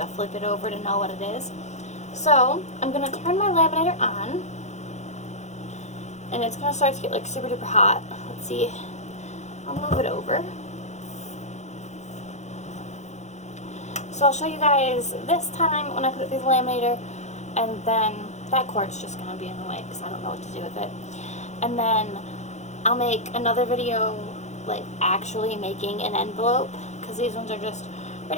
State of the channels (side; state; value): right; late; 0.33 ms